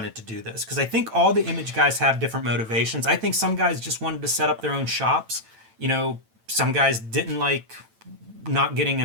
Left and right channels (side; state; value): left; late; 9.0 ms